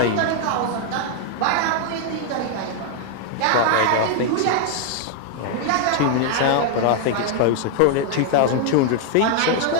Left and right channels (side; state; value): both; different; correlation 0.00